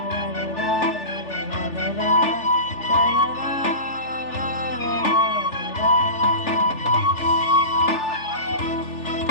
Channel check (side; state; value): right; late; 3.4 ms